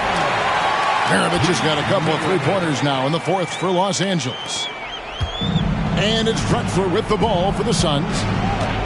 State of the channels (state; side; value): identical; both; correlation 1.00